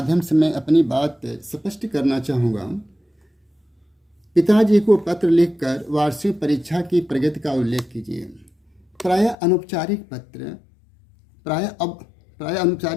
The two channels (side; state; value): right; drops out; at 9.3 s